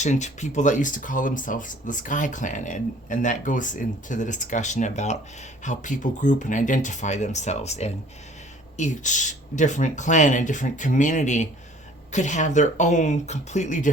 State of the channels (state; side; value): normal; both; correlation 0.53